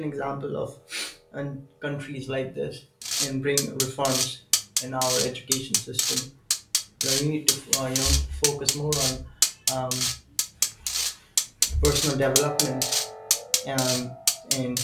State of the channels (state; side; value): identical; both; correlation 1.00